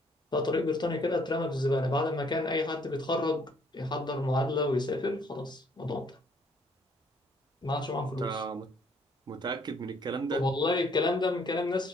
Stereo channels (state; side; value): normal; both; correlation 0.64